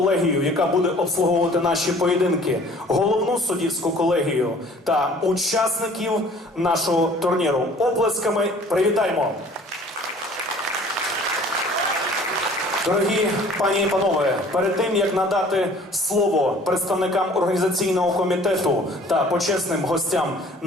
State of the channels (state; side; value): normal; both; correlation 0.51